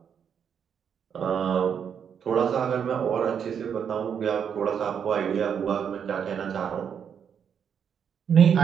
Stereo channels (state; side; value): quieter; left; 7.7 dB